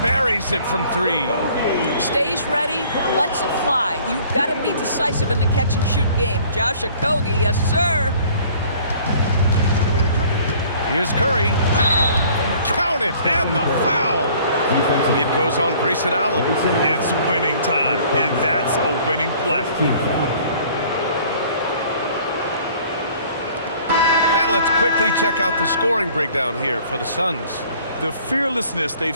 buries it from 3. Stays ready, lets it fly. You've got to be decisive in the catch-and-shoot game. Josh Okogie, yes, sir. Here's Curry. Count it, and the foul. It goes on Grayson Allen. It's winning time, and that's a winning play. And let's quickly check out the scoring breakdown here for the Suns. The fearlessness they've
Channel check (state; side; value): inverted; both; correlation -0.54